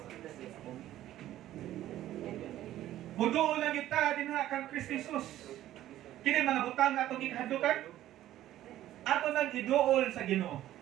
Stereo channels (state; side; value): quieter; left; 13.4 dB